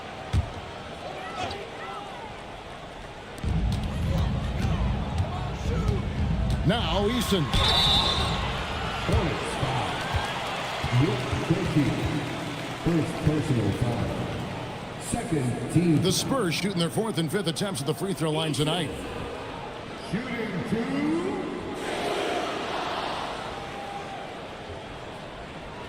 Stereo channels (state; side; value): identical; both; correlation 1.00